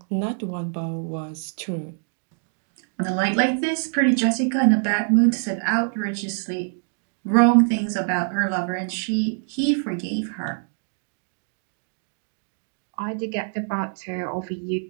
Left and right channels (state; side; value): silent; left; 62 dB below the other